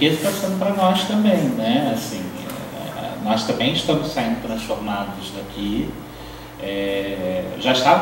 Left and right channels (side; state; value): both; identical; correlation 1.00